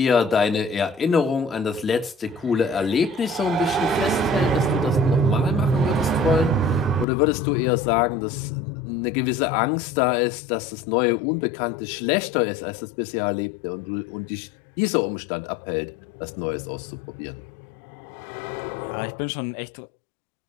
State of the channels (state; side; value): drops out; right; at 7.1 s